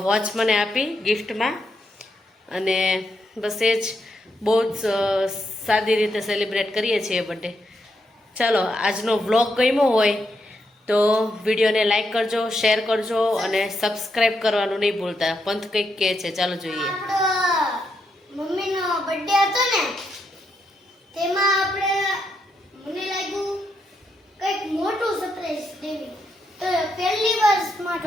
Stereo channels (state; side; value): normal; both; correlation 0.81